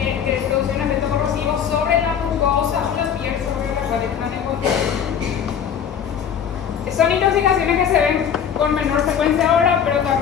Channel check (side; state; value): right; quieter; 8.1 dB